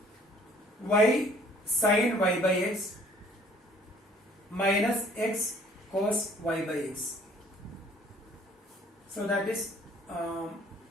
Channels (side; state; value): both; normal; correlation 0.56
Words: y sin y by x minus x cos y by x. So that is